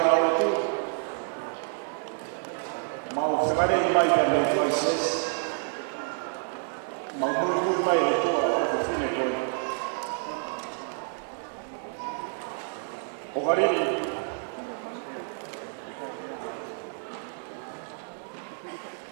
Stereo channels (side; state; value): left; silent; 59 dB below the other